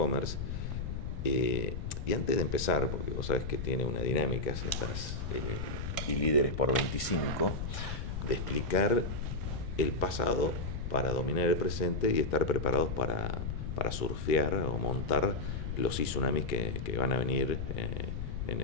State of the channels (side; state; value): left; noise; rumble, 4 dB below the sound